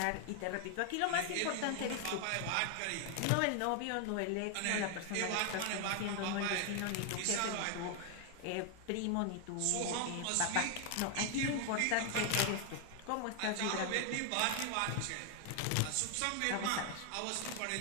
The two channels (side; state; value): both; different; correlation 0.00